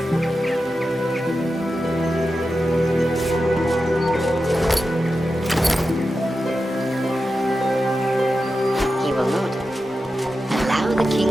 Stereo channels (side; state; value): both; normal; correlation 0.91